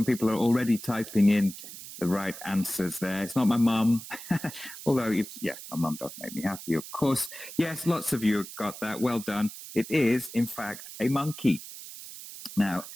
people are already typing in the right answers there. It's not my mum, although, yeah, my mum does make me happy, of course. Yes, lots of you got that. Well done. It is, in fact, a monkey. Now,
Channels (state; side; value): noise; right; hiss, 13 dB below the sound